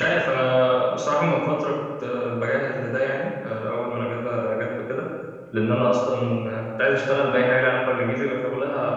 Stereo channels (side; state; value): both; identical; correlation 1.00